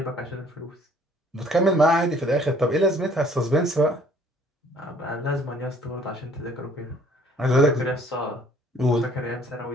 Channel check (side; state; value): both; normal; correlation 0.58